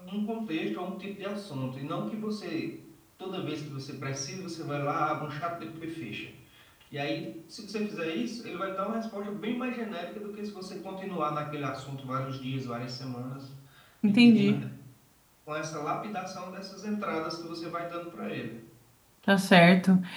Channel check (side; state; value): both; identical; correlation 1.00